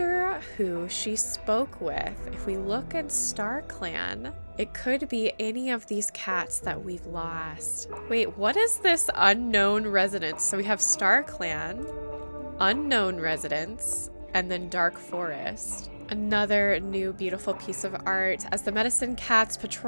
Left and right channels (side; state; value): both; inverted; correlation -1.00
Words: who she spoke with. If we look at Star Clan, it could be any of these cats that we've lost. Wait, what is this unknown residence? So we have Star Clan, unknown residence, and then Dark Forest. Another new beautiful piece of art. As the Medicine Cat's